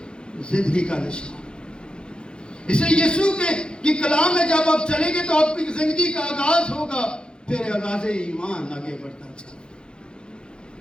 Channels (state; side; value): late; right; 0.050 ms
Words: زندگی کا نشان۔ اس لیے یسوع کے کلام میں جب آپ چلیں گے تو آپ کی زندگی کا آغاز ہوگا، پھر آغاز ایمان آگے بڑھتا چلے۔